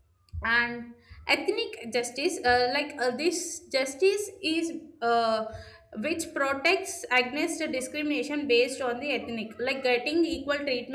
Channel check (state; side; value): identical; both; correlation 1.00